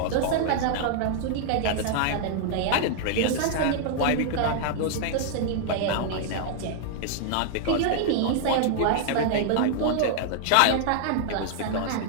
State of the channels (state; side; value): different; both; correlation -0.01